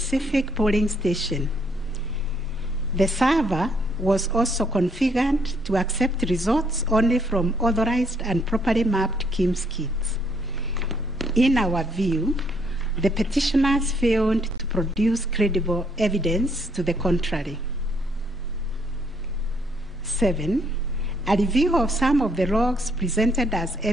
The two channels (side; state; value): both; normal; correlation 0.69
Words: polling station. The server was also configured to accept results only from authorized and properly mapped KIMS kits. In our view, the petitioners failed to produce credible evidence to the contrary. 7, a review of some of the logs presented as